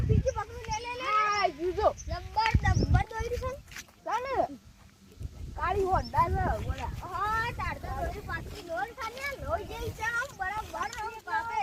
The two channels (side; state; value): both; identical; correlation 1.00